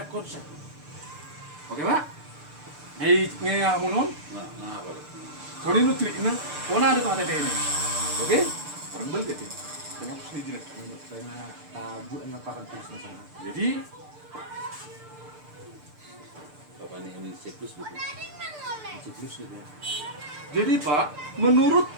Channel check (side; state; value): left; late; 6.7 ms